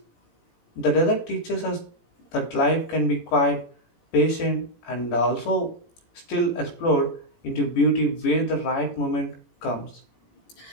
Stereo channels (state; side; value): late; right; 18 ms